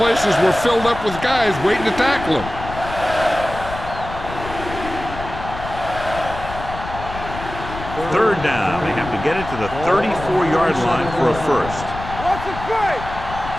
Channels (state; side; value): noise; left; rumble, 10 dB below the sound